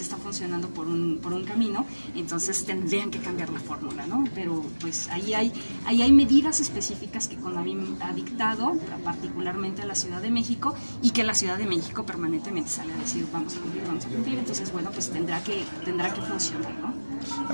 funcionando por un camino, entonces tendrían que cambiar la fórmula, ¿no? Pero pues ahí hay medidas específicas que CONAVIM ha dictado, particularmente a la Ciudad de México, y que la Ciudad de México permanentemente sale a decir vamos a cumplir, entonces bueno, pues tendrá que funcionar, ¿no?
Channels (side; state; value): both; inverted; correlation -1.00